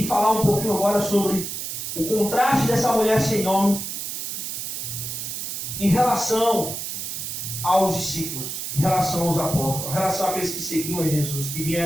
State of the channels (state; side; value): noise; right; hiss, 5 dB below the sound